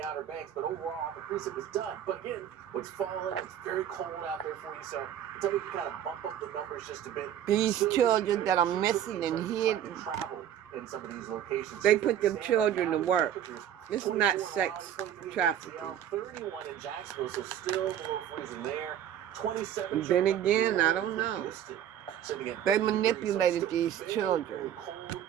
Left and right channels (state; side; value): quieter; left; 10.4 dB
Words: Outer Banks, but overall the precip is done. But again, what's falling, it's very cold out there for you, so until we can kind of bump up the numbers just a bit. These children that are missing and hidden, Travel in some of these locations. they put them children to work. It's not sex trafficking. 31 in Jacksonville, so still below freezing there. 27. And then again, I don't know. They manipulated these children.